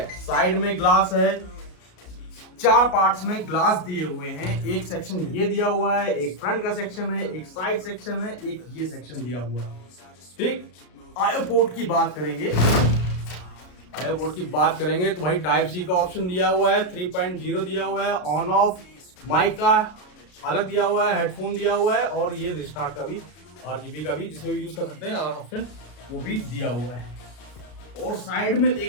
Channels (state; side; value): late; right; 33 ms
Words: साइड में ग्लास है, 4 पार्ट्स में ग्लास दिए हुए हैं। एक सेक्शन ये दिया हुआ है, एक फ्रंट का सेक्शन है, एक साइड सेक्शन है, एक ये सेक्शन दिया हुआ है, ठीक। आईओ पोर्ट की बात करेंगे, तो भाई टाइप सी का ऑप्शन दिया हुआ है, 3.0 दिया हुआ है, ऑन ऑफ माइक का अलग दिया हुआ है, हेडफोन दिया हुआ है, और ये रिस्टार्ट का भी RGB का भी जिसमें भी यूज कर सकते हैं ऑप्शन वो भी दिया हुआ है। और साइड में